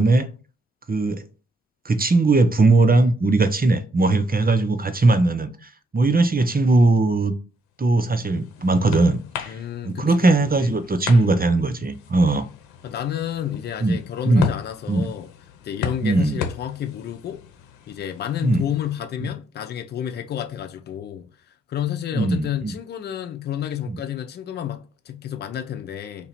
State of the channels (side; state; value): both; normal; correlation 0.76